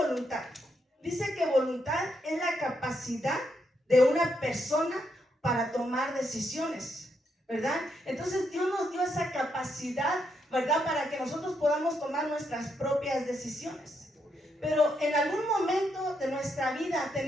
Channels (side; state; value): both; normal; correlation 0.79